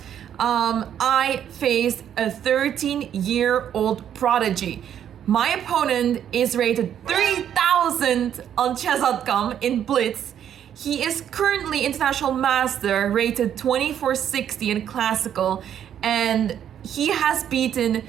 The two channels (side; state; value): left; quieter; 9.7 dB